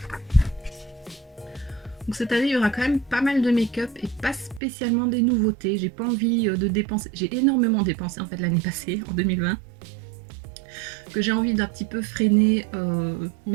Donc cette année, il y aura quand même pas mal de make-up et pas spécialement des nouveautés. J'ai pas envie de dépenser. J'ai énormément dépensé en fait l'année passée, en 2020. Que j'ai envie d'un petit peu freiner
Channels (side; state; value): left; drops out; at 4.6 s